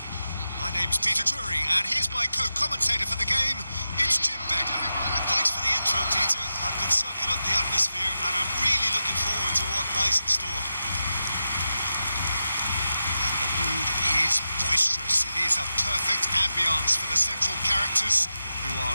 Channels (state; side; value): inverted; both; correlation -0.91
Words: My name's Peter Drury, and here's my co-commentator for the game. It's Jim Beglin. Thanks for the intro, Peter. I've been soaking up the atmosphere, and I'm really looking forward to what lies in store. The mood is boisterous. It is a perfect ambience for the central characters who